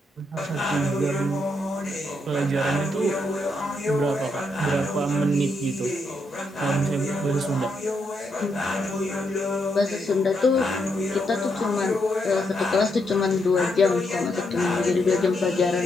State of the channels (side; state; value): both; normal; correlation 0.79